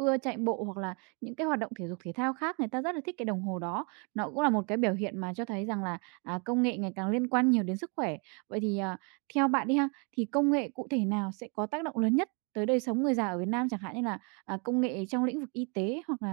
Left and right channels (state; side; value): quieter; left; 34.7 dB